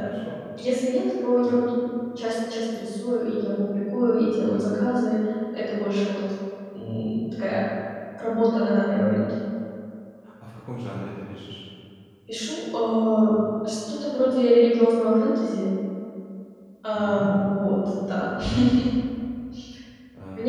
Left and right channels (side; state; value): both; identical; correlation 1.00